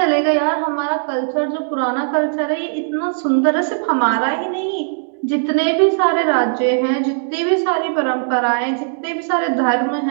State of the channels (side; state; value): left; silent; digital silence